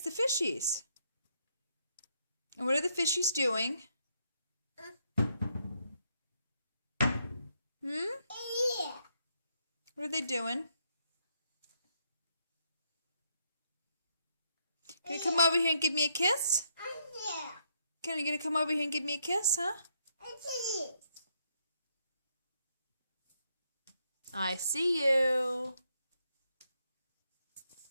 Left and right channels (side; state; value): both; inverted; correlation -0.74